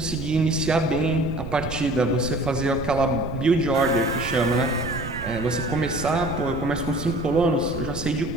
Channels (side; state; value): right; noise; rumble, 9 dB below the sound